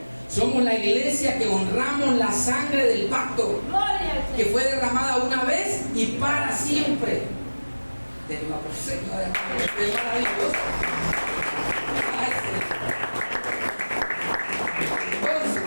Somos la iglesia que honramos la sangre del pacto, que fue derramada una vez y para siempre. Denle una persona, es maravilloso.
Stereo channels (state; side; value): inverted; both; correlation -1.00